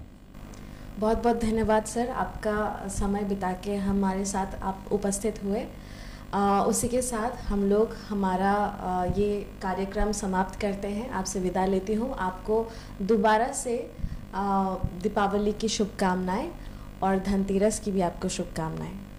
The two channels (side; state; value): both; identical; correlation 1.00